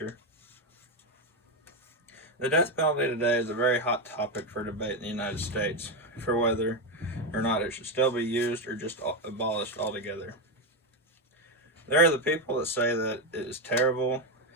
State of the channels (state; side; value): normal; both; correlation 0.09